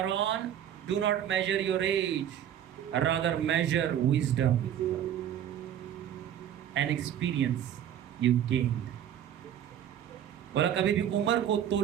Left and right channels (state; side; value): quieter; left; 10.2 dB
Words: do not measure your age, rather measure wisdom and experience you gained. बोला कभी भी उम्र को